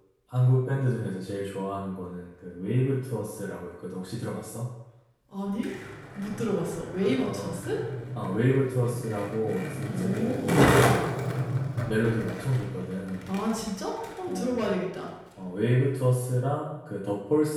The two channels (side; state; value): both; identical; correlation 1.00